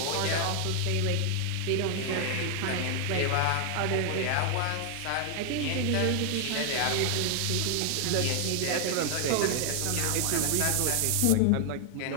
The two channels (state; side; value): different; both; correlation 0.00